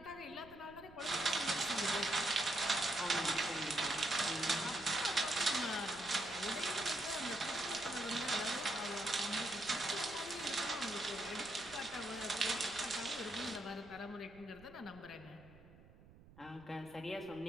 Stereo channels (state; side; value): noise; right; rumble, 22 dB below the sound